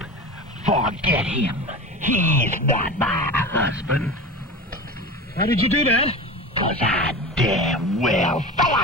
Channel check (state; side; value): normal; both; correlation 0.30